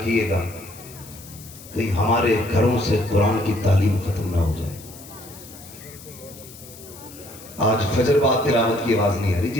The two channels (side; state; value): left; noise; hiss, 18 dB below the sound